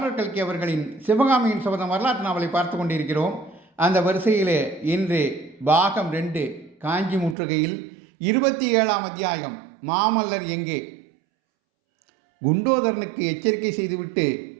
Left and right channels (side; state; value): left; drops out; at 7.4 s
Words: கல்கி அவர்களின் சிவகாமியின் சபதம் வரலாற்று நாவலை பார்த்து கொண்டிருக்கிறோம். அந்த வரிசையிலே இன்று பாகம் 2 காஞ்சி முற்றுகையில் 27ஆம் அத்தியாயம் மாமல்லர் எங்கே. குண்டோதரனுக்கு எச்சரிக்கை செய்துவிட்டு